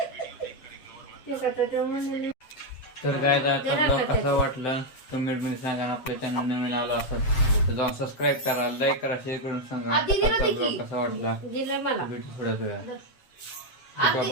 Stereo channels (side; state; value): right; late; 7.7 ms